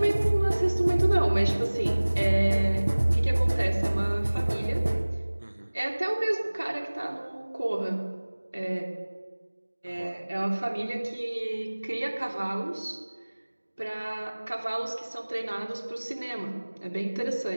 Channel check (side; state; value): both; inverted; correlation -1.00